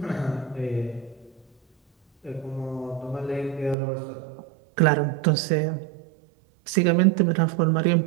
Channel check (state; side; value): drops out; left; at 3.8 s